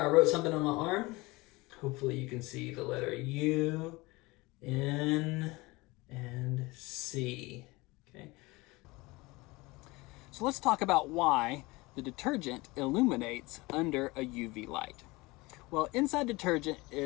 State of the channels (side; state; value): right; quieter; 22.9 dB